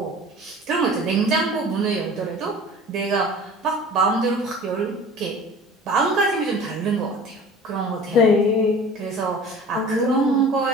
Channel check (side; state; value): both; normal; correlation 0.42